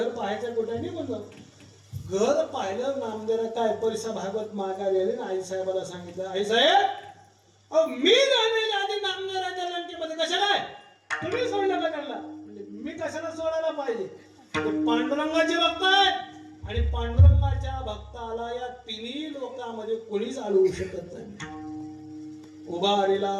पाहायचं कुठे नाही. म्हणलं घर पाहिलं. नामदेवराय काय परिसा भागवत माघारी आले ना आई साहेबाला सांगितलं आई साहेब अहो मी जाण्याच्या आधी नामदेवरायच्या लंकेमध्ये कशाला आहे तुम्ही सोडलं का त्यांना. म्हणजे मी कशाला सोडायला पाहिजे. ते पांडुरंगाचे भक्त आहेत आणि पांडुरंगाच्या भक्ताला या तिन्ही लोकांमध्ये कोणीच अडवू शकत नाही. उभारीला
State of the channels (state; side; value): identical; both; correlation 1.00